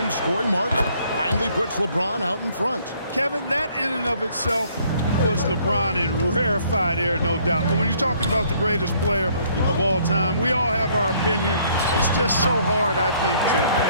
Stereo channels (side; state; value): both; inverted; correlation -0.63